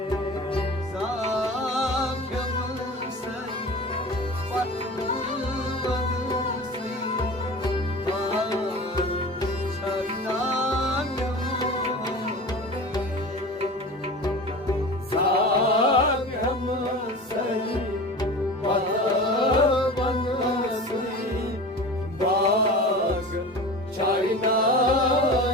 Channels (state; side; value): normal; both; correlation 0.35